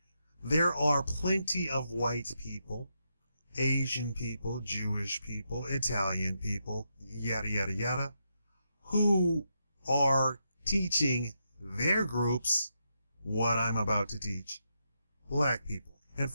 There are plenty of white people, Asian people, Jewish people, Italian people, yada, yada, yada, who are teaching their groups what I'm about to teach black people. And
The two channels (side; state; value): both; inverted; correlation -0.83